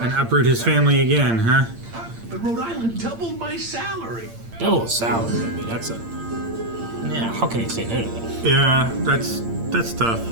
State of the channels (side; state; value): left; late; 8.7 ms